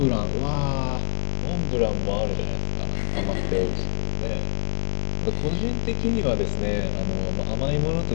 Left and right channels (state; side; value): silent; right; 62 dB below the other